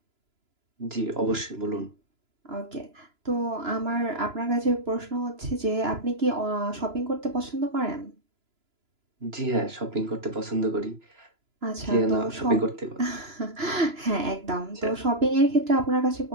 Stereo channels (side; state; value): left; late; 2.9 ms